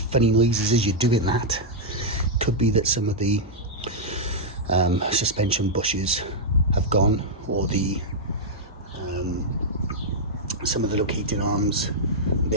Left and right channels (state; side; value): normal; both; correlation -0.05